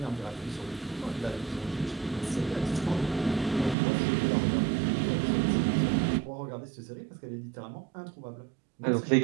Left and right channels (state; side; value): drops out; left; at 3.8 s